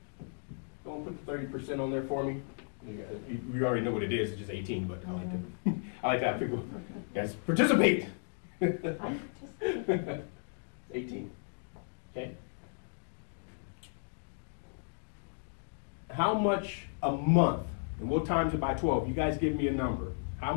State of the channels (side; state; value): right; silent; digital silence